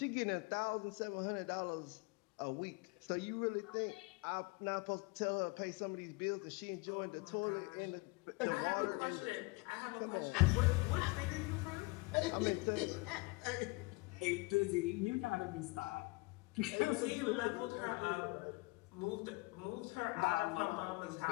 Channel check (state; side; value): quieter; right; 25.9 dB